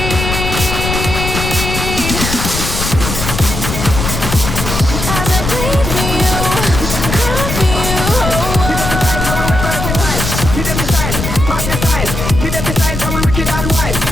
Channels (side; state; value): left; noise; rumble, 4 dB below the sound